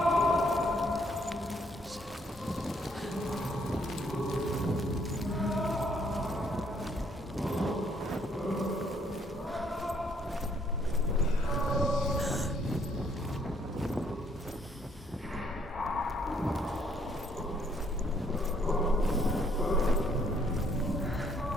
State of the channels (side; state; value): both; normal; correlation 0.68